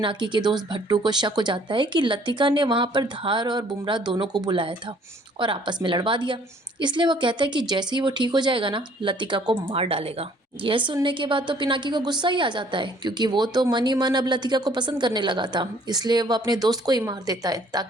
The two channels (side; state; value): both; normal; correlation 0.59